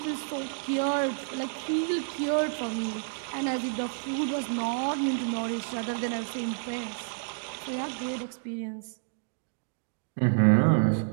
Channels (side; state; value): left; silent; digital silence